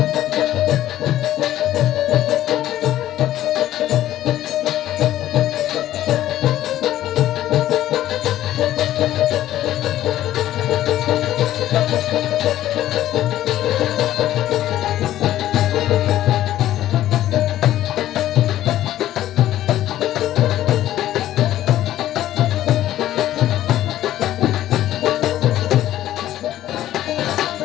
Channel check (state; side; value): quieter; right; 13.3 dB